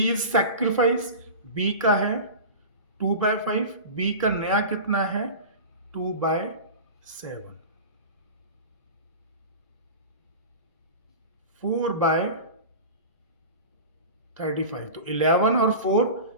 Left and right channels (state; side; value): inverted; both; correlation -0.32